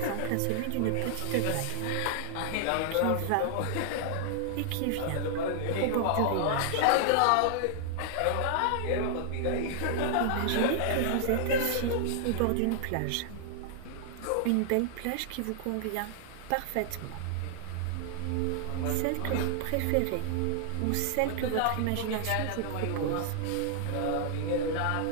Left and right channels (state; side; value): different; both; correlation 0.00